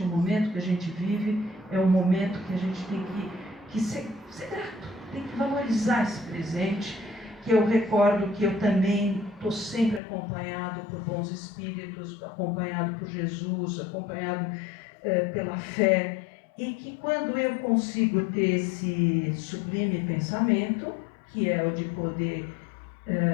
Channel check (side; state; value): right; drops out; at 10.0 s